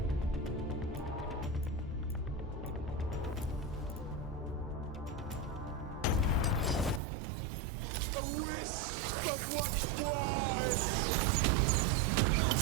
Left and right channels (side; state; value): left; drops out; at 7.0 s